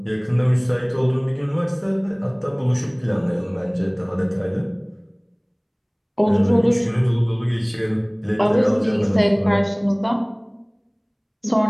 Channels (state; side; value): identical; both; correlation 1.00